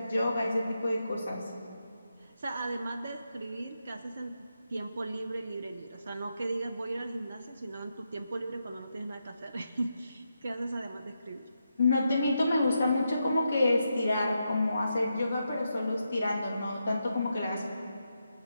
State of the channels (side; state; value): both; inverted; correlation -0.85